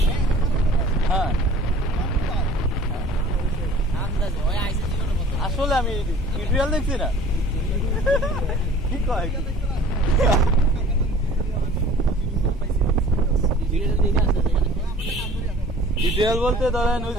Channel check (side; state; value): both; normal; correlation 0.48